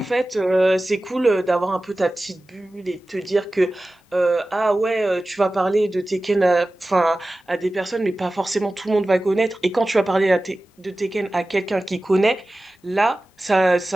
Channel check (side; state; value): both; normal; correlation 0.96